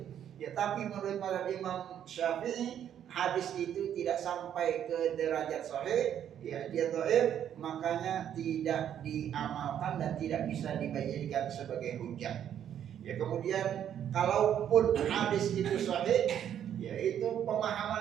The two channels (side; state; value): left; quieter; 9.8 dB